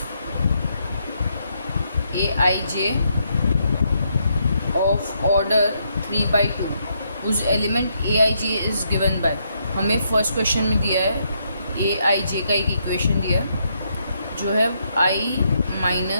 Aij of order 3/2 उस element Aij is given by. हमें फर्स्ट क्वेश्चन में दिया है Aij का एक इक्वेशन दिया है जो है i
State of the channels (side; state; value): both; inverted; correlation -0.77